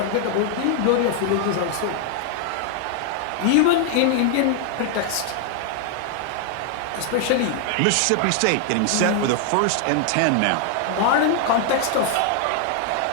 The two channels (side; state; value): both; different; correlation 0.00